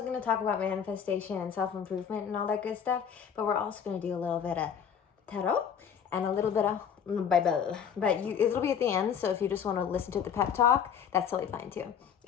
going to talk about manifestation and self-improvement and all that good stuff, but we're also going to do a little bit of tarot and a little bit of Bible. But it'll be at the end, so if you just want to listen to the pep talk, that's totally fine too.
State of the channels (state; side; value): quieter; right; 7.8 dB